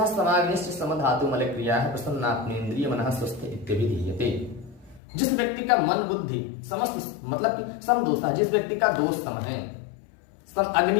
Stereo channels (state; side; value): drops out; right; at 5.0 s